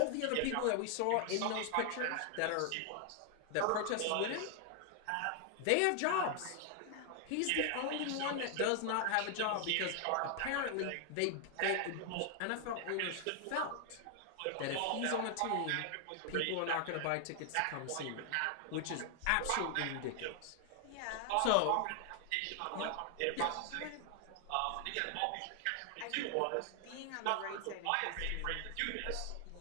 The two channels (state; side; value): different; both; correlation 0.00